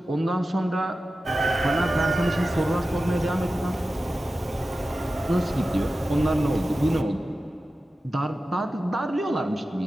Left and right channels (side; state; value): both; normal; correlation 0.94